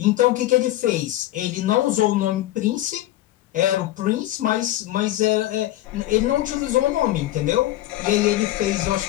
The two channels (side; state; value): right; quieter; 15.2 dB